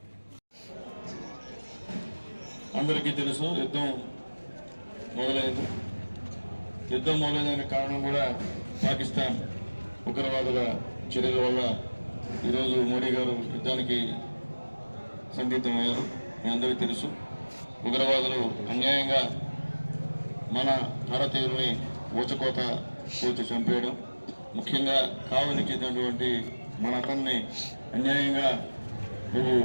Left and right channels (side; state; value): both; inverted; correlation -1.00